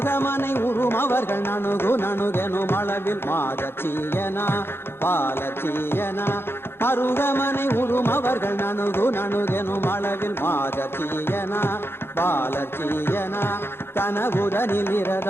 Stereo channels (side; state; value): right; late; 0.11 ms